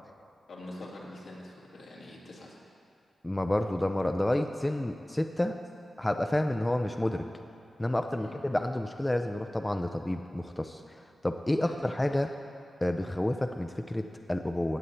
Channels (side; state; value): both; normal; correlation 0.98